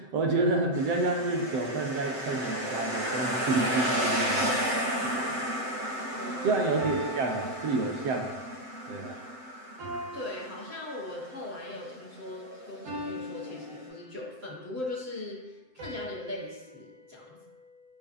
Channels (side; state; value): left; late; 7.7 ms